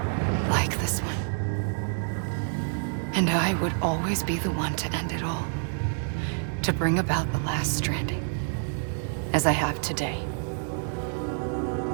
Like this one. And I would always be the one to end it all. To bring about the last stranding. As I have today.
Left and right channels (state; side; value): silent; left; 60 dB below the other